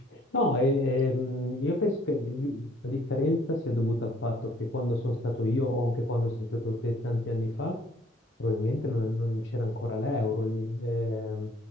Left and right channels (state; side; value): normal; both; correlation 0.61